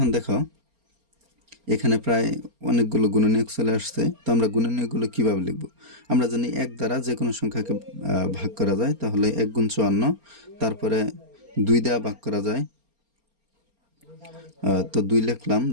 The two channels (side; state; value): left; late; 4.3 ms